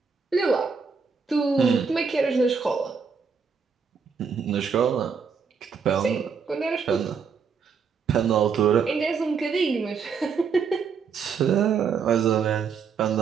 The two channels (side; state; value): left; quieter; 5.9 dB